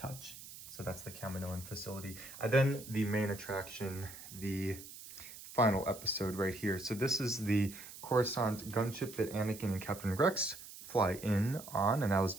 So that's the Kaminoan facility. And then the main attraction, the final episode right here. So this is the Coruscant gunship that Anakin and Captain Rex fly in on, and I was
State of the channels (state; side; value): noise; right; hiss, 14 dB below the sound